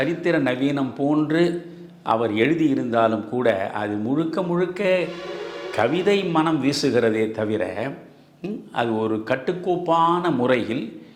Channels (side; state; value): both; identical; correlation 1.00